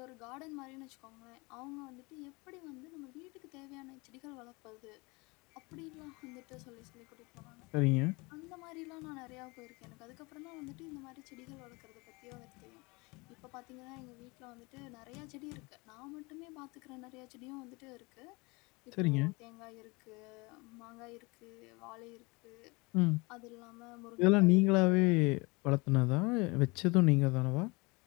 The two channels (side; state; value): right; quieter; 26.3 dB